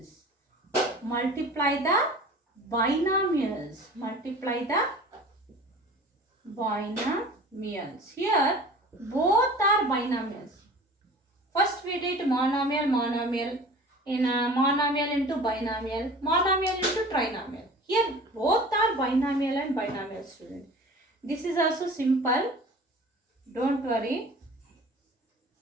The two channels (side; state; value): both; normal; correlation 0.42